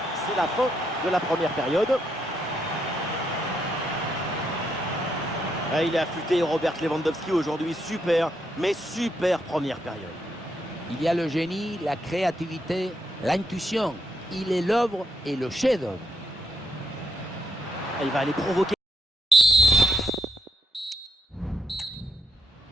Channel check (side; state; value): both; normal; correlation 0.77